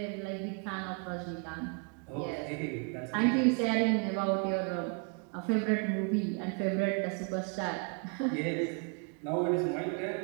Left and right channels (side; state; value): left; quieter; 35.9 dB